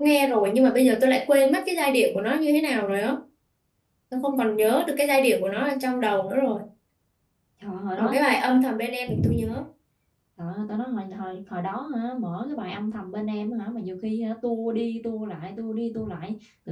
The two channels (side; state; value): both; identical; correlation 1.00